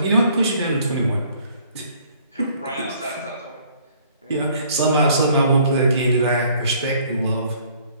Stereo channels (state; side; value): inverted; both; correlation -0.59